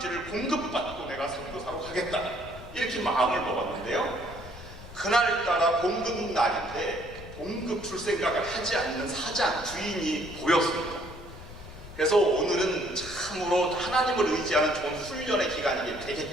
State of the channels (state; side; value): noise; left; rumble, 15 dB below the sound